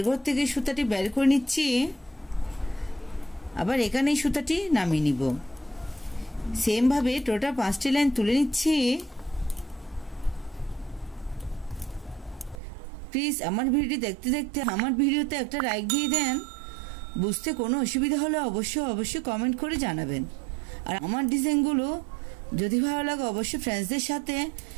ঘর থেকে সুতাটি বের করে নিচ্ছি। আবার এখানেই সুতাটি নামিয়ে নিব। সেম ভাবে টোটাল 5টি লাইন তুলে নিচ্ছি। প্লিজ আমার ভিডিওটি দেখতে দেখতে আমার ভিডিওতে একটা লাইক দিয়ে দেন। বুঝতে কোনো অসুবিধা হলে অবশ্যই কমেন্ট করে জানাবেন। আর আমার ডিজাইনগুলো যদি ভালো লাগে অবশ্যই ফ্রেন্ডসদের সাথে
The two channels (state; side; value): drops out; left; at 12.6 s